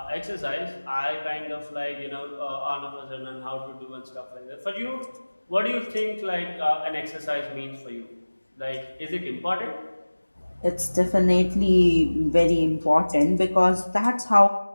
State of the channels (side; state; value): both; inverted; correlation -1.00